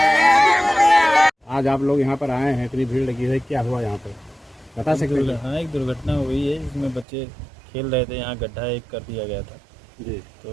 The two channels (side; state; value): left; drops out; at 7.1 s